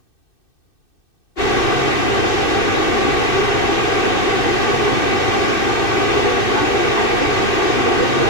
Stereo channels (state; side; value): late; right; 2.6 ms